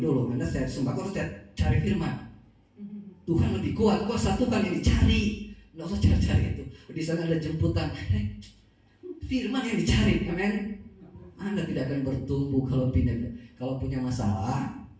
Anda saya sembako harus cari firman. Tuhan lebih kuat, kuasa Tuhan yang dicari. Nggak usah cari-cari itu. Di sana ada jemputan. Firman yang dicari, amin. Anda tidak akan bertumbuh kalau pindah. Kalau punya masalah,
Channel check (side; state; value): both; identical; correlation 1.00